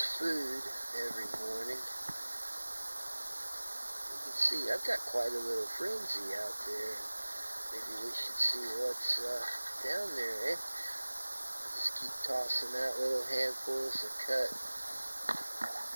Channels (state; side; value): inverted; both; correlation -1.00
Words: food every morning. You can see I've got quite a little frenzy out there. Maybe we should see what's down there, eh? I just keep tossing out little handfuls of cut